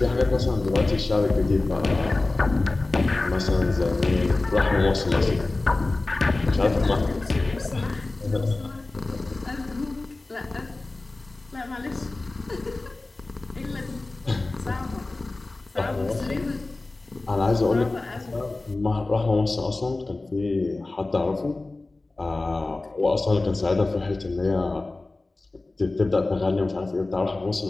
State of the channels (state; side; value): quieter; right; 3.1 dB